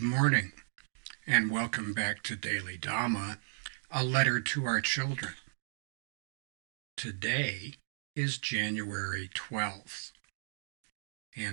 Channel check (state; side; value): silent; left; digital silence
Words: morning, and welcome back to Daily Dhamma, a letter to our children. Today is January 12th,